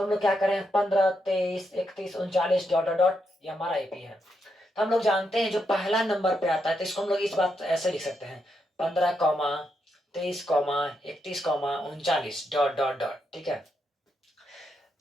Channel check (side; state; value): both; normal; correlation 0.81